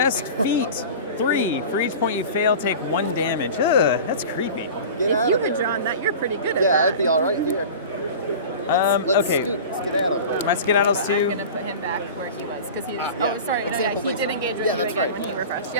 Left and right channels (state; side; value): inverted; both; correlation -0.35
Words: feet. 3. For each point you fail, take 1 damage. Ugh, that's creepy. Get If out you of had there. drawn that, you're pretty good at Yeah, that. I'd be all right here. Let's Okay. scoot, skedaddle. My skedaddles I'm too. gonna put him back where he was because he's. yeah. Oh, sorry. No, yeah, Example he base. did engage with Yeah, you that's again right. when he refreshed.